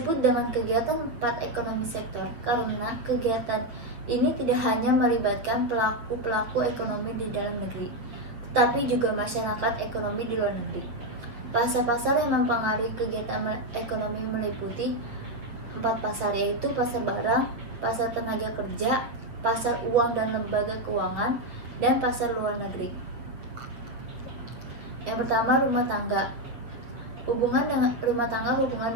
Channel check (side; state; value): left; late; 8.0 ms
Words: dengan kegiatan empat ekonomi sektor karena kegiatan ini tidak hanya melibatkan pelaku ekonomi di dalam negeri, tetapi juga masyarakat ekonomi di luar negeri. Pasar-pasar yang mempengaruhi kegiatan ekonomi meliputi empat pasar, yaitu pasar barang, pasar tenaga kerja, pasar uang dan lembaga keuangan, dan pasar luar negeri. Yang pertama, rumah tangga. Hubungan dengan